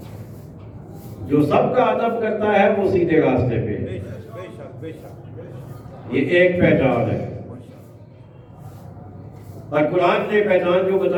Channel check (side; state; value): both; identical; correlation 1.00